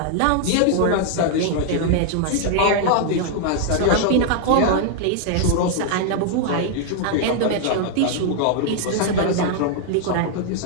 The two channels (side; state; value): both; different; correlation 0.00